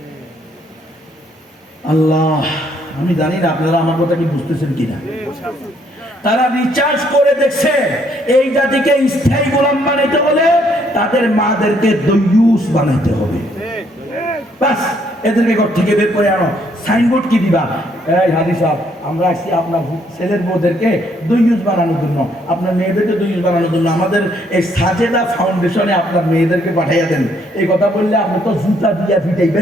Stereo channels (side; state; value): both; normal; correlation 0.69